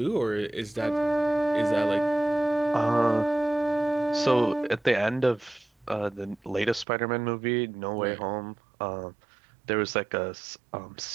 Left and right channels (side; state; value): left; drops out; at 6.9 s